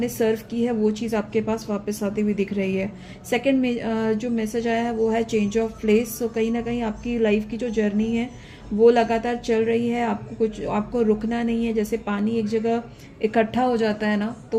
सर्व की है वो चीज़ आपके पास वापस आती हुई दिख रही है। सेकंड में जो मैसेज आया है वो है चेंज ऑफ प्लेस। कहीं ना कहीं आपकी लाइफ की जो जर्नी है वो लगातार चल रही है। आपको रुकना नहीं है। जैसे पानी एक जगह इकट्ठा हो जाता है ना,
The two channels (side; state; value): both; identical; correlation 1.00